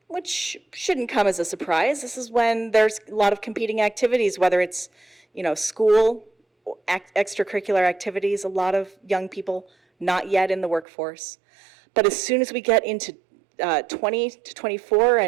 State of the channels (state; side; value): drops out; left; at 10.9 s